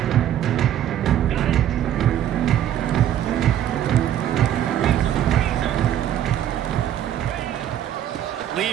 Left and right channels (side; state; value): left; quieter; 11.0 dB